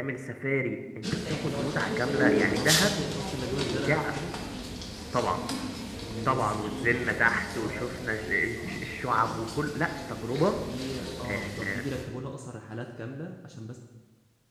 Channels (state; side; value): identical; both; correlation 1.00